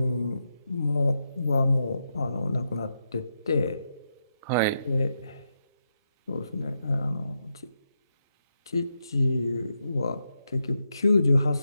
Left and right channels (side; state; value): both; inverted; correlation -0.84